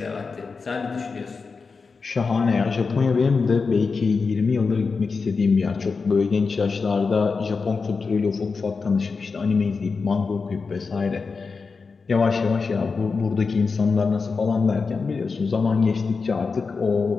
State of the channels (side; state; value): right; quieter; 4.7 dB